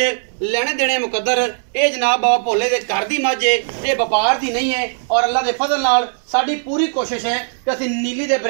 लेने देने मुकद्दर। ये जनाब बाबा भोले के घर की मझ है, ये व्यापार की नहीं है। और अल्लाह के फजल नाल साडी पूरी कोशिश है कि असीं नीली दे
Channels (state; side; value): silent; left; digital silence